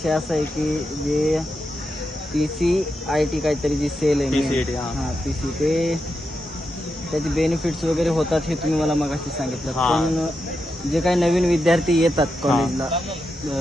असा आहे की जे PCIT काहीतरी जी सेल आहे PCIT, हां PC ते त्याचे बेनिफिट्स वगैरे होतात हे तुम्ही मला मगाशी सांगितलं. पण जे काही नवीन विद्यार्थी येतात कॉलेजला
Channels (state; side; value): normal; both; correlation 0.86